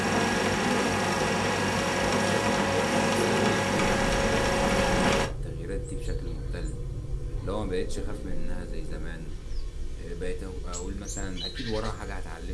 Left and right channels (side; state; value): both; identical; correlation 1.00